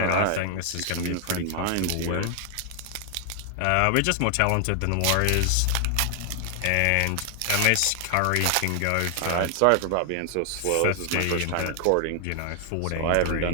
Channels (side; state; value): both; different; correlation 0.00